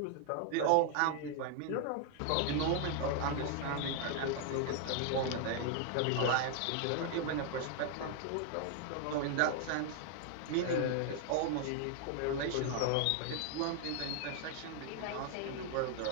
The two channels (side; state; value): both; different; correlation 0.00